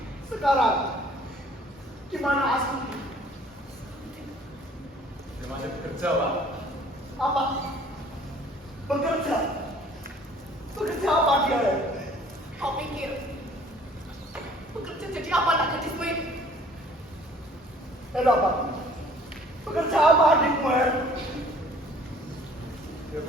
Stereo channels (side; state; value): both; normal; correlation 0.54